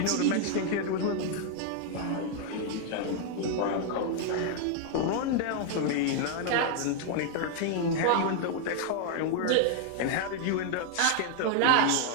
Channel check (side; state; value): both; different; correlation 0.00